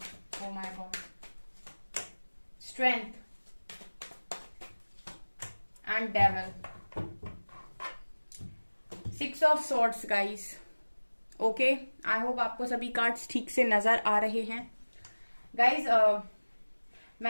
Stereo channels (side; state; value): both; inverted; correlation -1.00